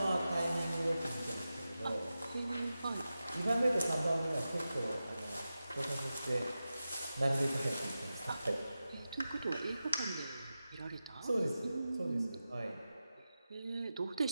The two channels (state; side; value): inverted; both; correlation -0.93